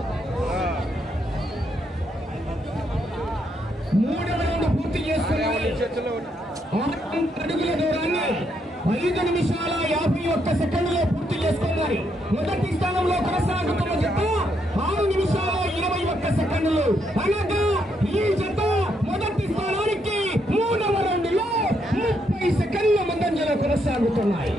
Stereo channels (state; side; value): normal; both; correlation 0.76